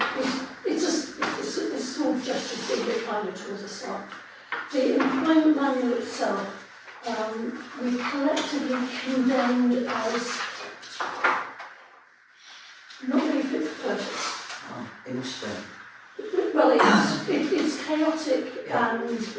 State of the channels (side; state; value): both; identical; correlation 1.00